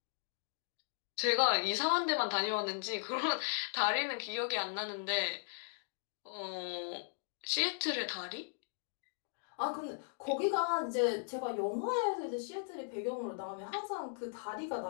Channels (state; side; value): silent; right; digital silence